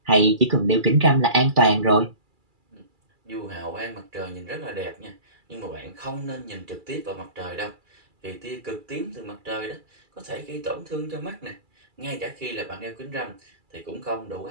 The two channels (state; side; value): late; left; 2.3 ms